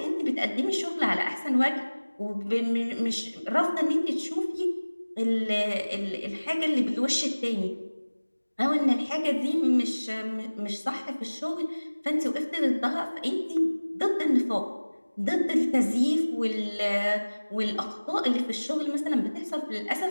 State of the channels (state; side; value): inverted; both; correlation -1.00